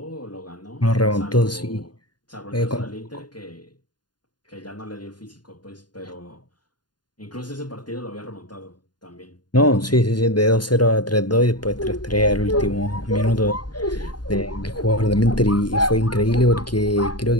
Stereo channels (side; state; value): right; late; 0.70 ms